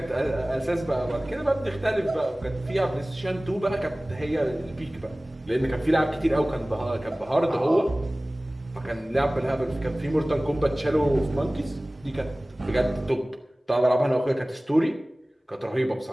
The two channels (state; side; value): normal; both; correlation 0.98